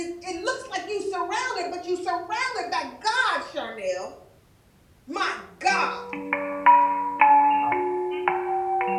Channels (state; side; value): identical; both; correlation 1.00